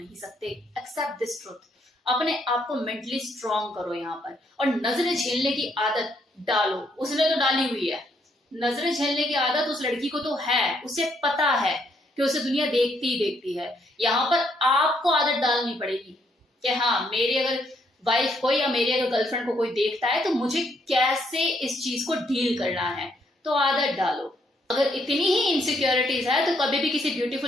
सकते। Accept this truth. अपने आप को मेंटली स्ट्रांग करो यहाँ पर, और नजरें झेलने की आदत डालो। उसने तो डाली हुई है, नजरें झेलने की आदत उस लड़की को तो है, उसे पता है कि उसे दुनिया देखती ही देखती है। यहाँ पर आपको आदत डालनी पड़ेगी कि हाँ, मेरी अगर वाइफ को या मेरी अगर गर्लफ्रेंड को कोई देखता है तो मुझे कैसे इस चीज को डील करना है, तो आदत डालो। अगर इतनी ही इनसिक्योरिटीज है तो कभी भी किसी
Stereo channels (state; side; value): normal; both; correlation 0.72